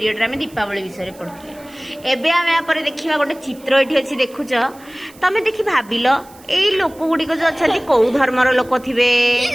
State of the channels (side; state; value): right; noise; hiss, 25 dB below the sound